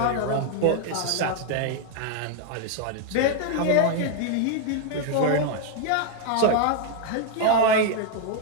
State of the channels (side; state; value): both; different; correlation 0.00